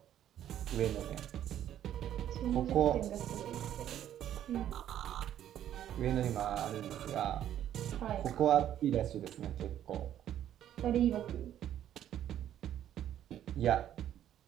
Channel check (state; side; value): quieter; left; 11.1 dB